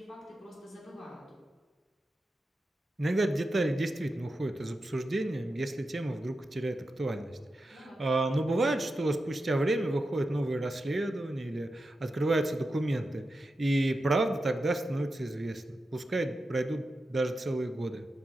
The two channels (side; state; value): both; normal; correlation 0.90